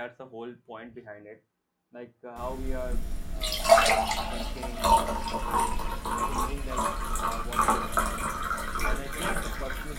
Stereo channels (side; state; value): both; identical; correlation 1.00